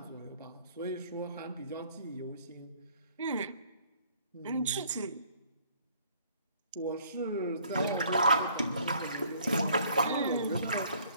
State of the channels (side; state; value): both; inverted; correlation -0.59